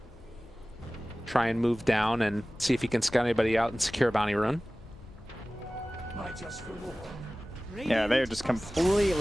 try and move down and see if he can scout anybody out and secure a bounty rune. Yeah, they're just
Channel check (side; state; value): both; normal; correlation 0.97